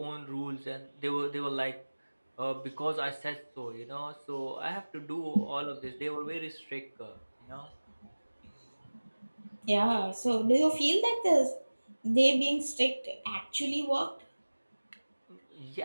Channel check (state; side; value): inverted; both; correlation -1.00